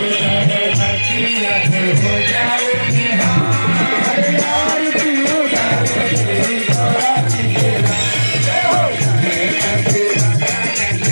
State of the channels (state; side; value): inverted; both; correlation -1.00